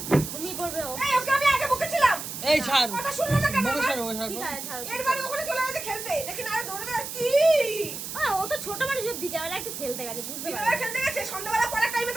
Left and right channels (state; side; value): noise; right; hiss, 7 dB below the sound